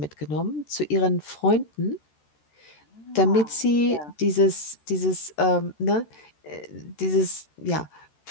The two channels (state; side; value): late; right; 13 ms